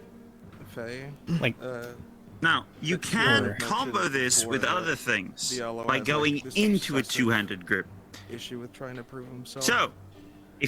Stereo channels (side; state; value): both; identical; correlation 1.00